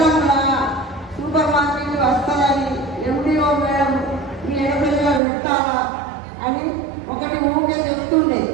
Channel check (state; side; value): drops out; left; at 5.2 s